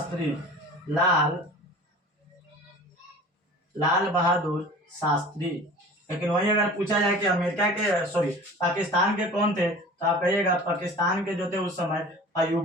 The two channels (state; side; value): normal; both; correlation 0.41